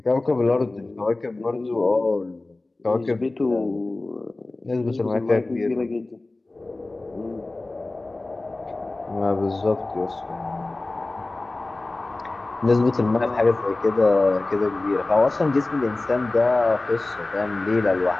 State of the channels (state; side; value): quieter; right; 3.0 dB